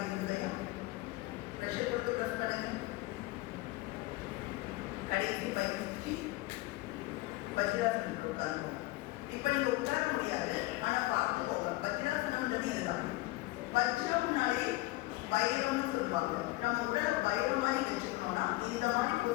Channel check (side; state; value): right; quieter; 19.7 dB